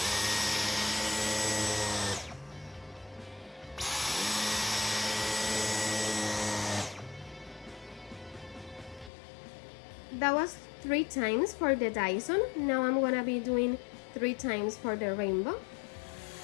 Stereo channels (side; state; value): right; drops out; at 9.1 s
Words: That was 3 times for the Dyson. Now I'm gonna be doing 3 times for the Rainbow.